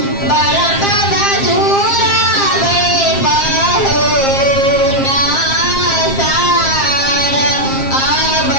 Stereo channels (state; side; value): late; right; 7.5 ms